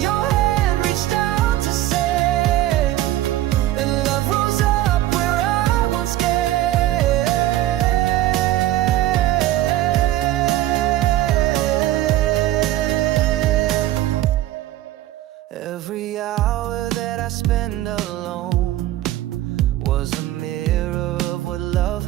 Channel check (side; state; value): left; quieter; 14.6 dB